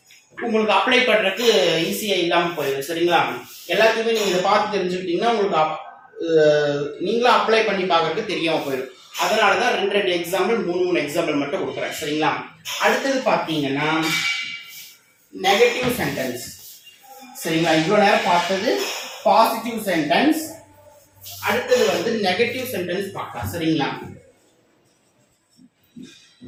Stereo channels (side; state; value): both; identical; correlation 1.00